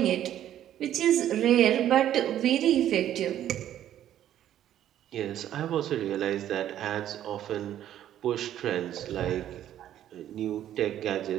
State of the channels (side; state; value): left; quieter; 11.5 dB